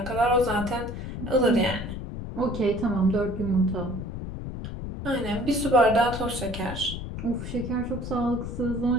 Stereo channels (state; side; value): noise; left; rumble, 7 dB below the sound